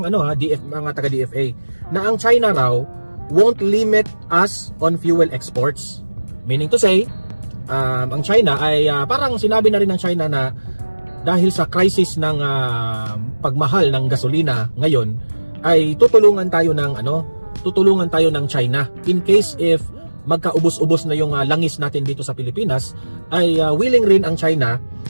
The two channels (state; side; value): inverted; both; correlation -1.00